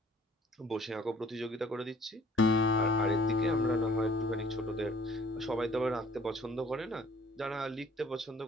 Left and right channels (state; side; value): normal; both; correlation 0.55